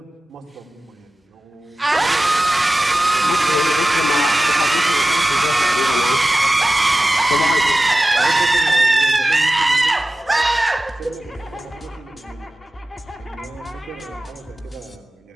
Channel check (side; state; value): both; normal; correlation 0.96